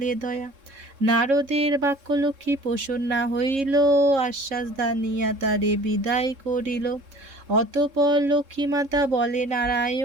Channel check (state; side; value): late; left; 3.7 ms